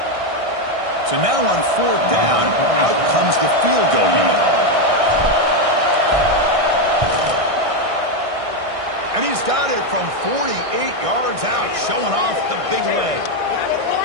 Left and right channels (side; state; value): left; late; 1.6 ms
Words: So now on fourth down, out comes the field goal unit. And he's got it from 48 yards out, showing off the big leg.